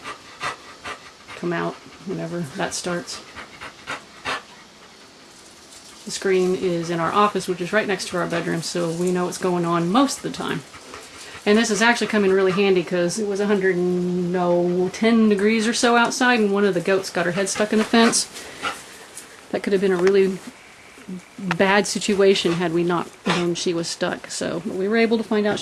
come out whenever that starts. The screen is in our office, which is right next to our bedroom, so we know what's going on most of the time. And this has actually come in really handy because it was 110 degrees or so outside, and one of the goats got her head stuck in the fence. That could have been a really bad situation had we not known she was stuck. So we were able to find out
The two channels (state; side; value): identical; both; correlation 1.00